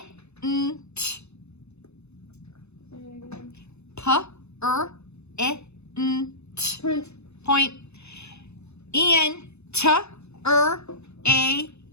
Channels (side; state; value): right; late; 0.81 ms